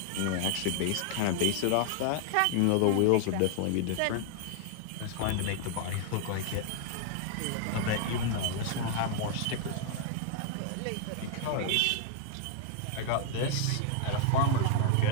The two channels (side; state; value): both; different; correlation 0.00